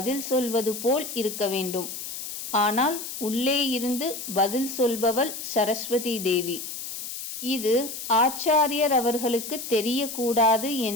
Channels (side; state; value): left; noise; hiss, 8 dB below the sound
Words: சொல்வது போல் இருக்க வேண்டும். ஆனால் உள்ளே இருந்து பதில் சொல்பவள் சரஸ்வதி தேவி. இது ஆச்சாரியர் அவர்களுக்கு தெரியக்கூடாது